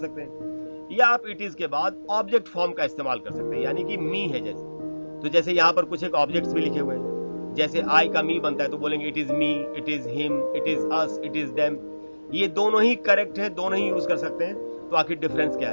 हैं। या आप इट इज के बाद ऑब्जेक्ट फॉर्म का इस्तेमाल कर सकते हैं, यानी कि मी है जैसे। तो जैसे यहाँ पर कुछ एक ऑब्जेक्ट्स भी लिखे हुए हैं, जैसे आई का मी बनता है तो बोलेंगे it is me, it is him, it is us, it is them. ये दोनों ही करेक्ट है, दोनों ही यूज कर सकते हैं। तो आखिर डिफरेंस क्या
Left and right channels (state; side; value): inverted; both; correlation -1.00